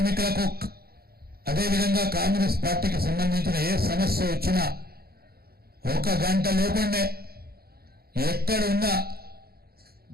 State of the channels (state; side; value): late; left; 0.45 ms